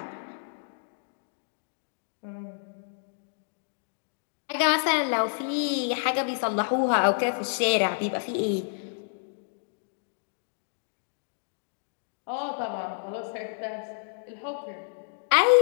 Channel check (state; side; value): silent; right; digital silence